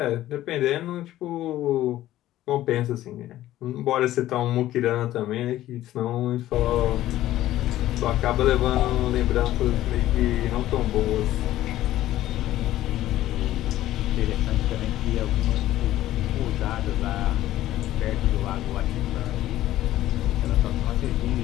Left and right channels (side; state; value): right; quieter; 14.2 dB